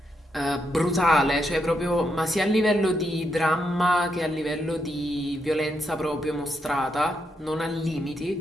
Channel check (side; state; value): both; normal; correlation 0.81